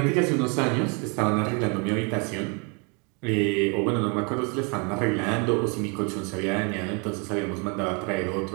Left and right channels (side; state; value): left; quieter; 33.3 dB